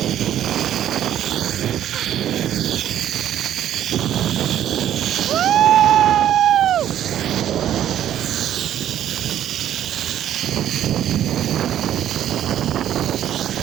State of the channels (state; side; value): quieter; left; 11.2 dB